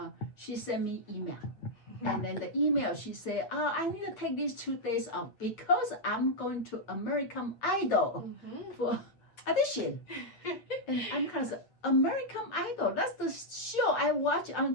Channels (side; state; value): right; late; 8.9 ms